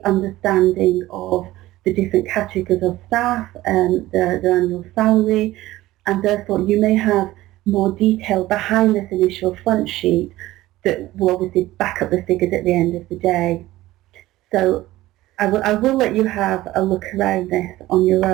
understanding of the different categories of staff and their annual salary, and therefore you may have more detail behind this initial front sheet that will obviously back up the figures at the end of the day. So I will let you have a look around this on your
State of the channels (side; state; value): left; quieter; 16.7 dB